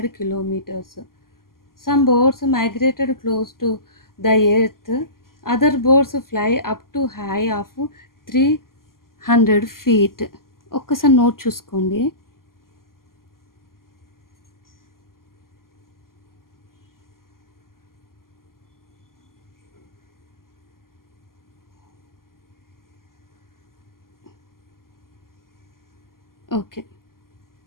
kilometers. Some birds migrated close to the earth, other birds fly up to high of 300 feet. ఒక్కసారి note చూసుకోండి. Okay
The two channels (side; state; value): right; late; 0.92 ms